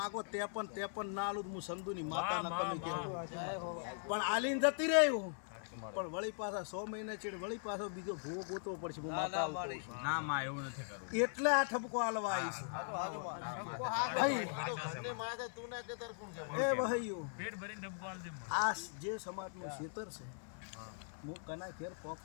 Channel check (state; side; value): silent; right; 51 dB below the other